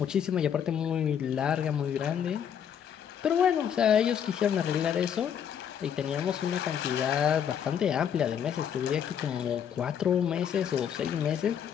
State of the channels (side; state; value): right; quieter; 8.5 dB